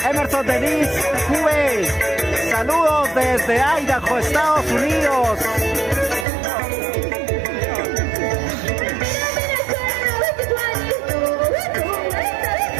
Emerson Denis Juve, saludos desde Idaho, Estados Unidos.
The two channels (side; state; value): left; drops out; at 6.2 s